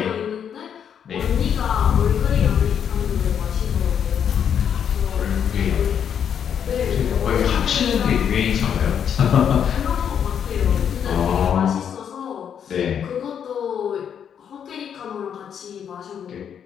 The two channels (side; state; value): right; quieter; 8.3 dB